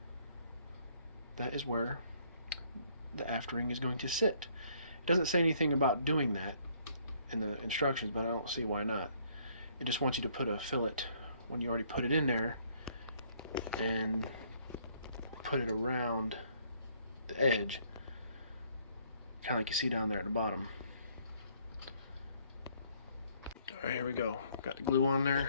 that is where the aft ring is going to sit. It doesn't say anything about doing that in the instructions, but I don't see why not. It just wants you to put a fillet when you already put it in there and put it around the edge, kind of like you see down there at the bottom. Alright, here we go. Got the glue on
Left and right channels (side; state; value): both; inverted; correlation -0.64